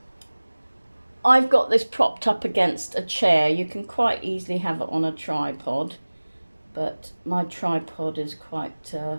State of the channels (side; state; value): both; inverted; correlation -1.00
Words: I've got this propped up against a chair. You can quite easily have it on a tripod, but my tripod is quite a